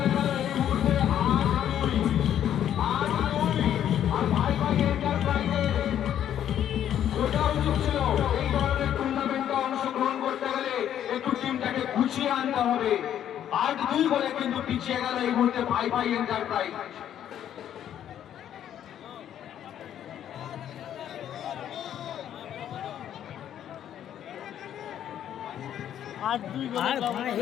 গেল এই মুহূর্তে 8-2 আর ভাই এন্টারপ্রাইজের ওটা উচিত ছিল এই ধরনের টুর্নামেন্টে অংশগ্রহণ করতে গেলে একটু টিমটাকে গুছিয়ে আনতে হবে। 8-2 বলে কিন্তু পিছিয়ে গেল এই মুহূর্তে ভাই এন্টারপ্রাইজ। 8-2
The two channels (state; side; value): quieter; right; 10.4 dB